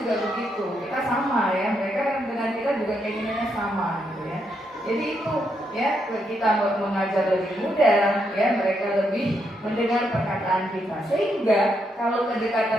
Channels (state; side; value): normal; both; correlation 0.79